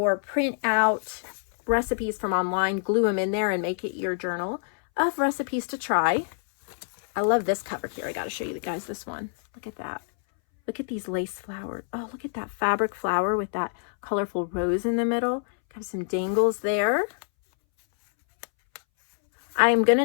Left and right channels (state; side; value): silent; right; 61 dB below the other